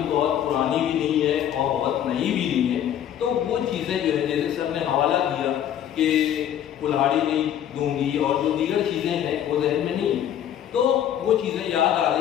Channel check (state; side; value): quieter; right; 10.3 dB